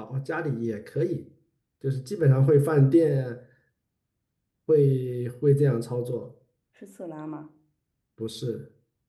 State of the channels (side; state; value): both; identical; correlation 1.00